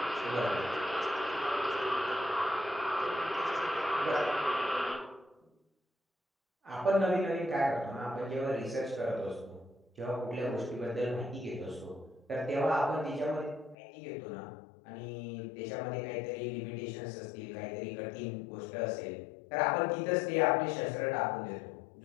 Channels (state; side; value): drops out; right; at 13.8 s